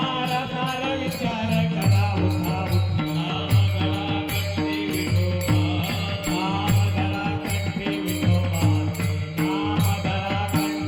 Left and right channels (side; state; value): both; identical; correlation 1.00